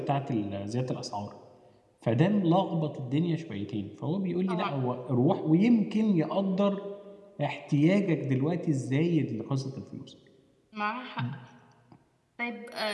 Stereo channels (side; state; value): both; identical; correlation 1.00